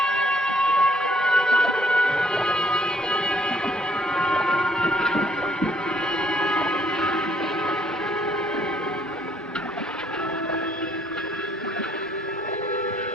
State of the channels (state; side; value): normal; both; correlation 0.65